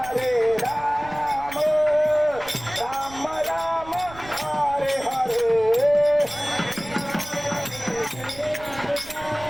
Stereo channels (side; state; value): right; noise; rumble, 18 dB below the sound